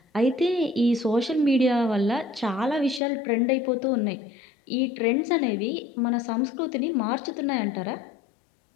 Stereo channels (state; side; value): drops out; right; at 3.0 s